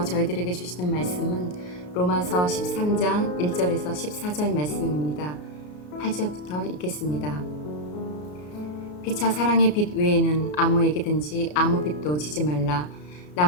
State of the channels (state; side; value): late; right; 33 ms